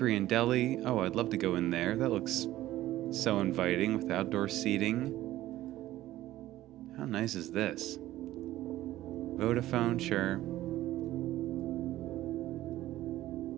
and deli. Oh, I'd love to go in there. That looks so inviting with outdoor seating. How nice is this? Vodafone, sure.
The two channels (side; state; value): left; quieter; 15.0 dB